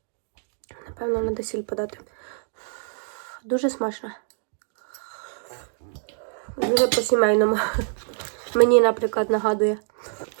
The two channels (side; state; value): left; silent; digital silence